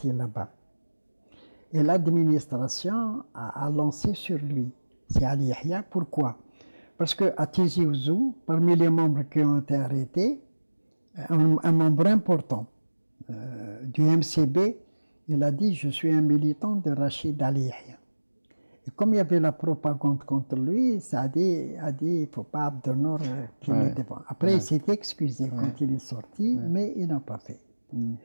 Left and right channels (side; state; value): both; inverted; correlation -1.00